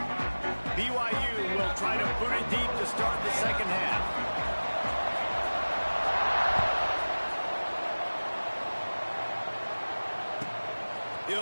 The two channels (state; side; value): inverted; both; correlation -1.00